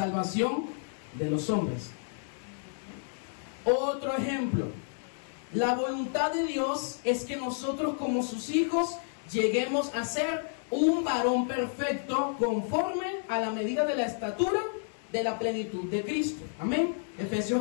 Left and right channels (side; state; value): right; silent; digital silence